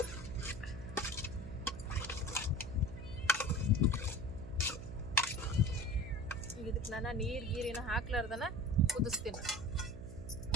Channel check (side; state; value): right; noise; hum, 12 dB below the sound